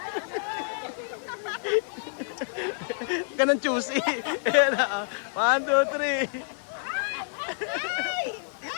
Ganun choosy. 1, 2, 3.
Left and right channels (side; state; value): right; silent; digital silence